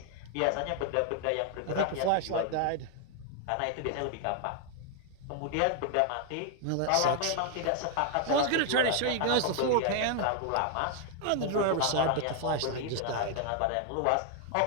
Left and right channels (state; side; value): different; both; correlation 0.00